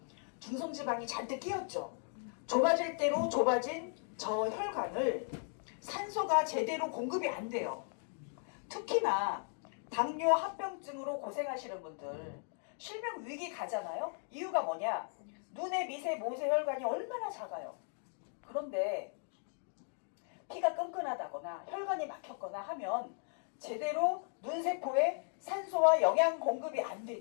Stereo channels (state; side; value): silent; right; 53 dB below the other